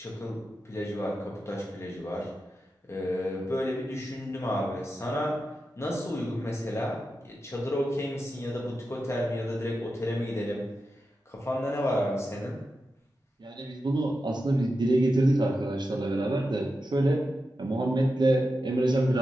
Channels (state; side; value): normal; both; correlation 0.90